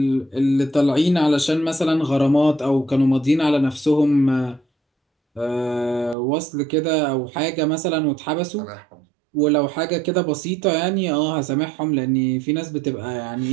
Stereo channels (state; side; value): drops out; left; at 6.2 s